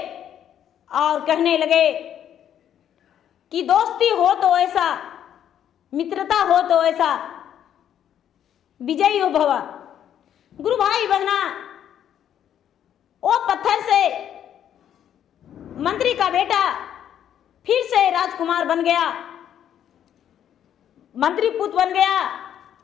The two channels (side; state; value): right; quieter; 9.9 dB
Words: और कहने लगे कि दोस्ती हो तो ऐसा, मित्रता हो तो ऐसा, विजयी हो भवा। गुरु भाई बहना वो पत्थर से मंत्री का बेटा फिर से राजकुमार बन गया, मंत्री पुत्र बन गया